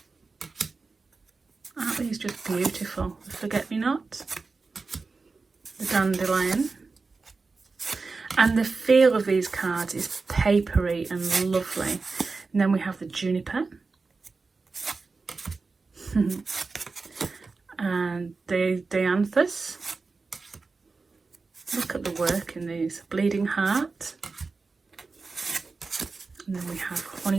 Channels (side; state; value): left; quieter; 4.2 dB